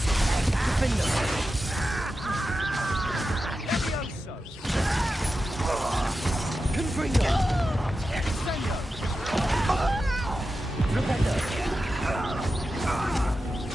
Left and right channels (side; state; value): both; normal; correlation 0.91